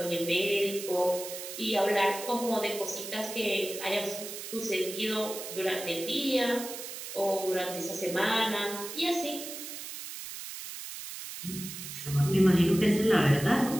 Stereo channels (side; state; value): right; noise; hiss, 9 dB below the sound